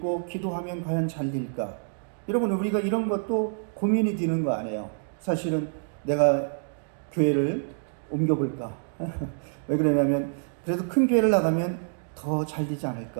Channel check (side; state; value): left; silent; digital silence